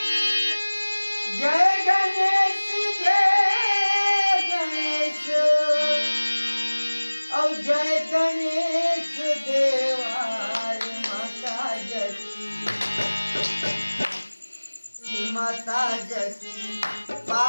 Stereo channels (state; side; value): inverted; both; correlation -1.00